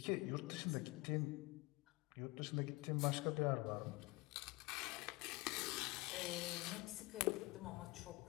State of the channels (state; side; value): quieter; right; 23.4 dB